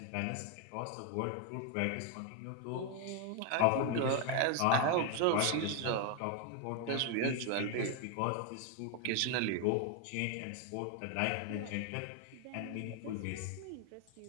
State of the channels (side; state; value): both; different; correlation 0.01